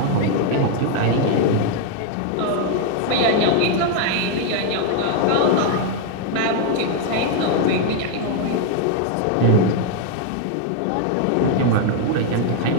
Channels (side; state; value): both; different; correlation 0.00